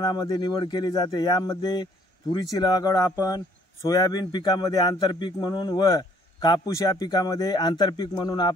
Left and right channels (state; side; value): normal; both; correlation 0.61